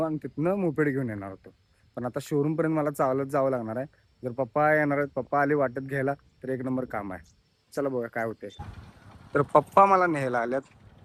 आणि तिथनं मोपेड घेऊन येणार होतो. पण आता शोरूमपर्यंत मला चालत जावं लागणार आहे. जर पप्पा येणार आहेत, पप्पा आले वाटत घ्यायला, तर एक नंबर काम आहे. चला बघा काय होते. तर पप्पा मला न्यायला आल्यात.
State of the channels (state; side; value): identical; both; correlation 1.00